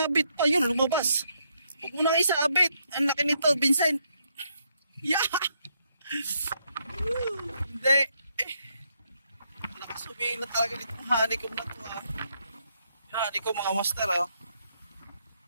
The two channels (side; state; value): both; inverted; correlation -0.76